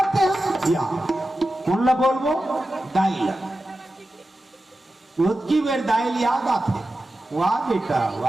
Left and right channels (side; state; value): both; normal; correlation 0.93